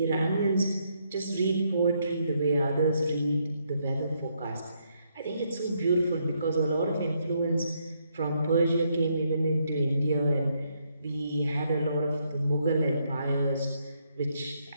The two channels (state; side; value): inverted; both; correlation -0.75